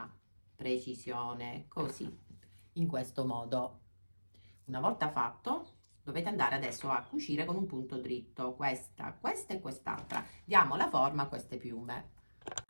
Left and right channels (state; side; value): inverted; both; correlation -1.00